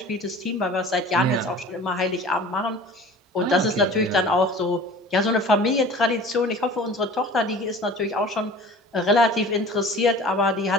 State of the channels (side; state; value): both; normal; correlation 0.43